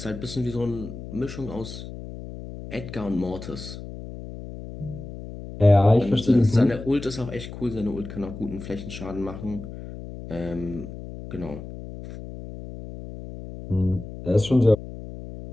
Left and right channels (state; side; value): noise; left; hum, 11 dB below the sound